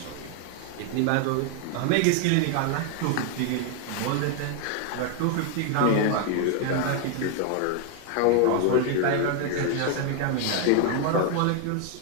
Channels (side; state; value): both; different; correlation 0.01